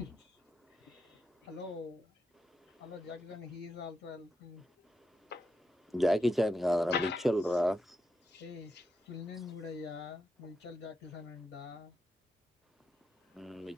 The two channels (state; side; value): normal; both; correlation 0.85